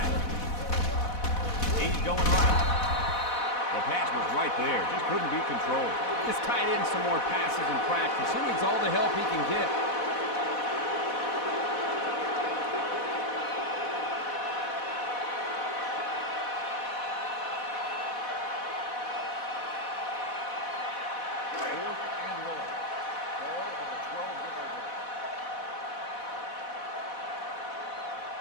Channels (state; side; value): late; right; 4.1 ms